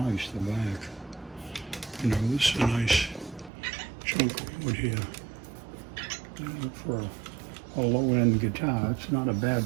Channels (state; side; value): drops out; left; at 3.5 s